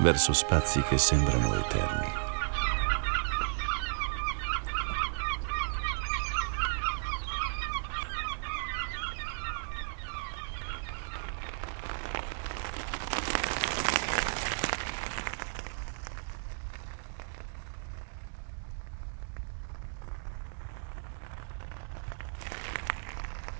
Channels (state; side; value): silent; left; digital silence